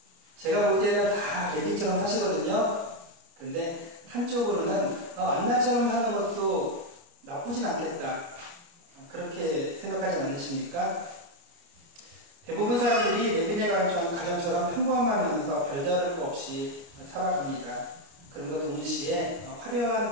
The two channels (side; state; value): left; late; 29 ms